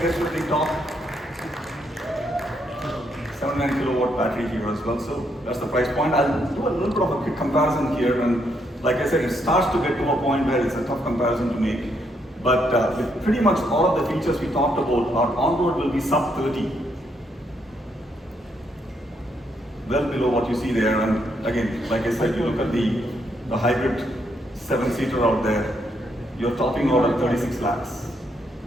gets to the top 79 kilowatt battery here as well. So that's the price point. I'll do a little bit of a quick comparison here, and like I said, it starts to get to a point where it's a tough comparison to make. But with pretty much all of the features we talked about, our on-road will be sub 30. Well below what you see there. And again, like I said, you look at the hybrid 7-seater out there, you're topping out at 36 lakhs.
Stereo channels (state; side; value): normal; both; correlation 0.75